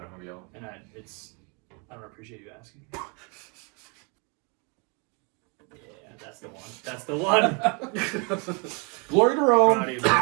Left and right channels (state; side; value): quieter; left; 33.2 dB